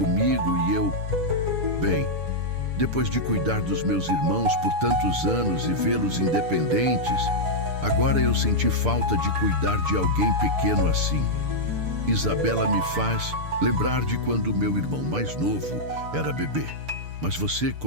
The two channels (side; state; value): left; late; 6.8 ms